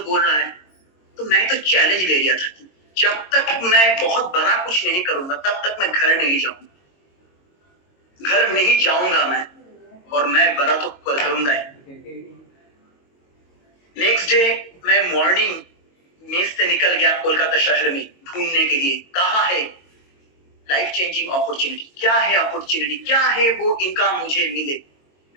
बोल रहा है, तो मैं तो चैलेंज ले लिया था कि जब तक मैं बहुत बड़ा कुछ नहीं करूंगा तब तक मैं घर नहीं जाऊंगा, घर नहीं जाऊंगा मैं, और मैं बड़ा तो करूंगा ही। नेक्स्ट डे मैं मॉर्निंग मेस से निकल गया कोलकाता शहर में ढूंढने के लिए, कहाँ है लाइफ चेंजिंग अपॉर्चुनिटी, क्या है अपॉर्चुनिटी, क्या है वो इनकम मुझे मिले।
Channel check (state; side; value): late; right; 22 ms